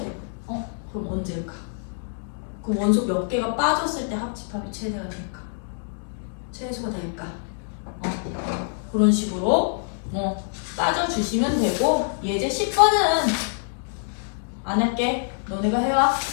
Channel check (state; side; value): silent; right; digital silence